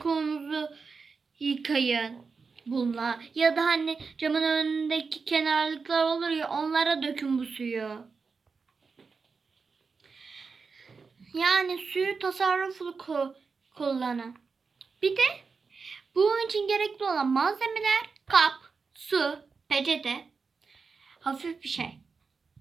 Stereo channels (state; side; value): quieter; left; 4.9 dB